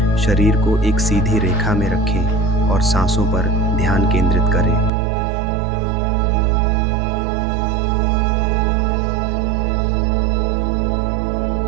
शरीर को एक सीधी रेखा में रखें और सांसों पर ध्यान केंद्रित करें।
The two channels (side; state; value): left; drops out; at 4.9 s